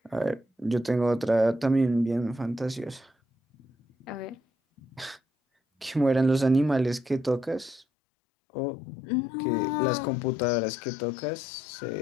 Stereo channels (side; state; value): right; drops out; at 7.9 s